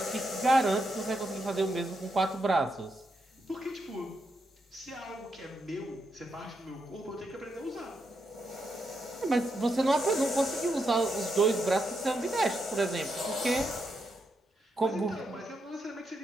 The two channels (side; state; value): both; normal; correlation 0.82